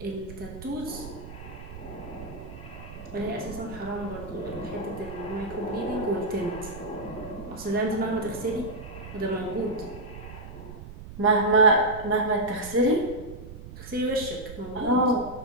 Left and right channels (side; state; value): right; noise; rumble, 13 dB below the sound